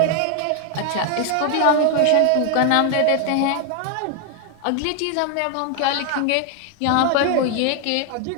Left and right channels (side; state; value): both; different; correlation 0.01